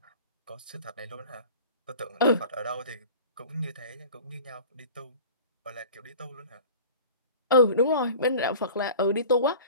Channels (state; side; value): inverted; both; correlation -0.40